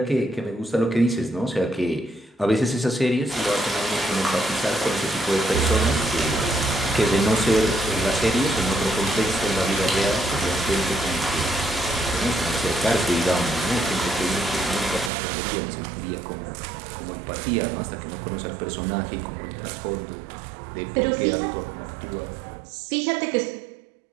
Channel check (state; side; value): drops out; left; at 15.1 s